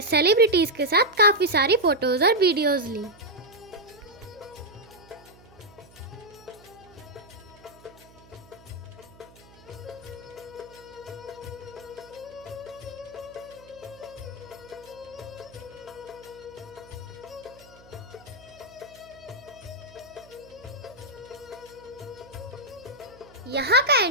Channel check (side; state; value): right; noise; hum, 24 dB below the sound